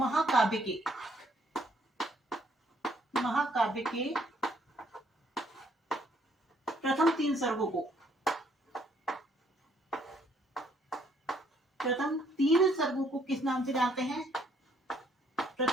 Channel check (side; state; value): both; normal; correlation 0.67